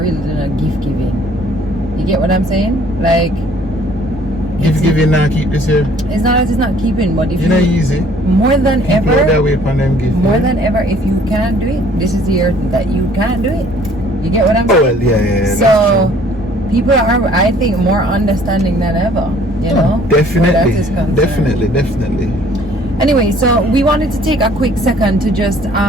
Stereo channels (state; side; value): normal; both; correlation 0.57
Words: really doing a gift giving. You get what I'm saying? Like, Gift giving now keep this year. it's not that it's not keeping, but if You know easy. more than People are that ever, way upon them gift. more than ever, if you can't do it, this is the year that you can't do it. You get what I'm Oh saying? well, yeah. So people are, I think, more understanding than ever. You know, where that is concerned. Definitely. Anyway, so we wanted to take a quick second to just